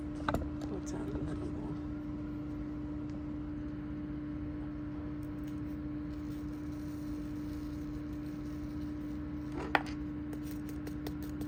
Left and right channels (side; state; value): both; identical; correlation 1.00